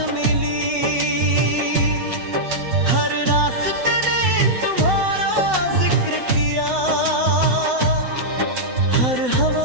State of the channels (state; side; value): late; left; 7.9 ms